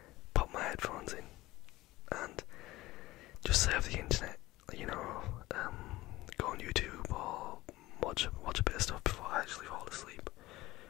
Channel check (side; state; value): right; quieter; 18.2 dB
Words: pop my headphones in, and just surf the internet, go on YouTube or watch a bit of stuff before I actually fall asleep.